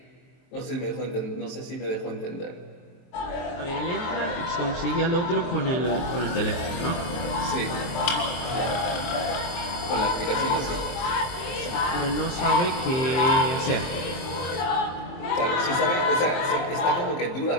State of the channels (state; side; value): late; right; 23 ms